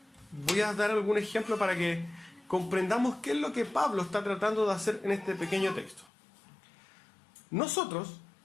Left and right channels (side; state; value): right; drops out; at 6.1 s